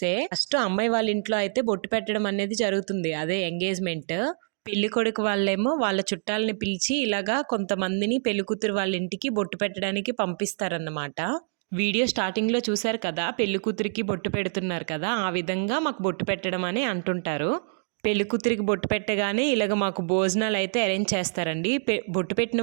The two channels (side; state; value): left; silent; 61 dB below the other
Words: ఫస్ట్ అమ్మాయి వాళ్ళ ఇంట్లో అయితే బొట్టు పెట్టడం అనేది జరుగుతుంది, అదే ఎంగేజ్మెంట్. పెళ్లి కొడుకు వాళ్ళేమో వాళ్ళ చుట్టాలని పిలిచి ఇలాగా కొంతమందిని పెళ్లి కూతురు వాళ్ళ ఇంటికి బొట్టు పెట్టడానికి పంపిస్తారన్నమాట. వీడియో స్టార్టింగ్లో చూశారు కదా, పెళ్లి కూతురికి బొట్టు పెడుతున్నారు కదా, ఆ విధంగా మాకు బొట్టు పెట్టడం అని అంటుంటారు. పెళ్లి కూతురికి బొట్టు పెట్టగానే ఇలాగ మాకు భోజనాలు అయితే అరేంజ్ చేస్తారండి. బొట్టు పెట్టిన